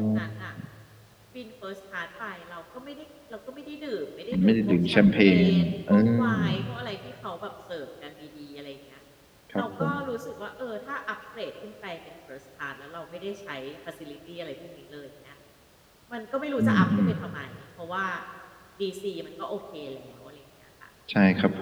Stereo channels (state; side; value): identical; both; correlation 1.00